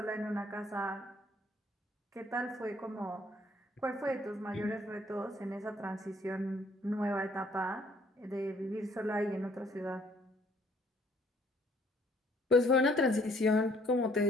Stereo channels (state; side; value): normal; both; correlation 0.63